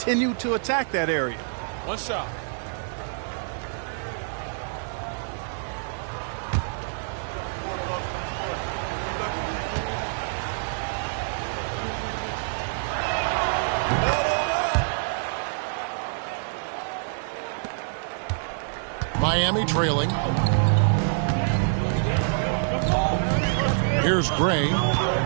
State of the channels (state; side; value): silent; left; 61 dB below the other